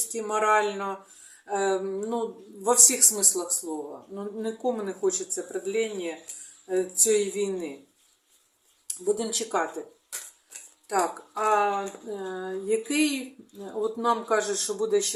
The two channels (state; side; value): identical; both; correlation 1.00